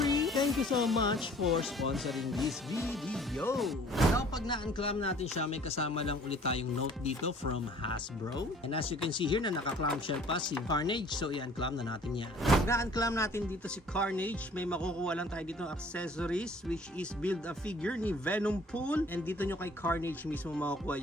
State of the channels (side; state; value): both; normal; correlation 0.53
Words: thank you so much for sponsoring this video. Now, pag na-unclam natin siya, may kasama lang ulit tayong note dito from Hasbro. And as you can see here, na naka-clamshell pa si Carnage. So, i-unclam na natin yan. Pag na-unclam natin dito si Carnage, may makukuha lang tayo dito ng accessories, which is build a figure ni Venom Pool. And dito nyo kay Carnage mismo makukuha